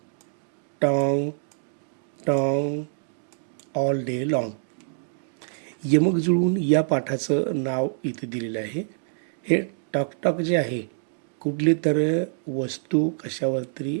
tong, tong, all day long. यमक जुळून या पाठाचं नाव इथे दिलेलं आहे. हे टॉक टॉक जे आहे, कुठली तर वस्तू कशावर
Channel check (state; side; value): silent; left; digital silence